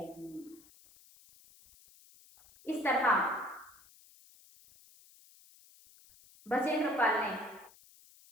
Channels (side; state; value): left; noise; hiss, 25 dB below the sound